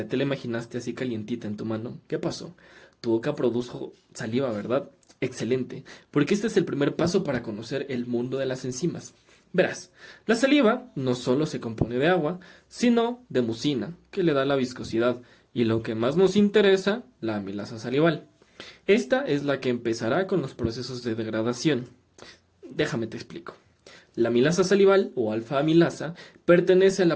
te la imaginaste así calientita en tu mano, ¿qué pasó? Tu boca produjo saliva, ¿verdad? Excelente, porque este es el primer paso para conocer el mundo de las enzimas. Verás, la saliva no solo se compone de agua, sino de mucina, que le da la viscosidad, y lo que más nos interesa, la amilasa salival. Esta es la que empezará con los procesos de degradación. Déjame te explico. La amilasa salival o alfa-amilasa pertenece a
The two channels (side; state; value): both; identical; correlation 1.00